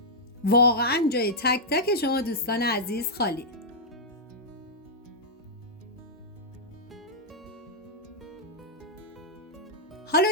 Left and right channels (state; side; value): normal; both; correlation -0.09